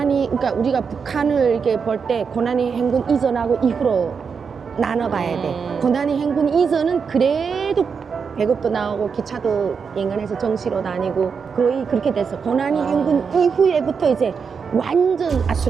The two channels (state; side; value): quieter; left; 5.9 dB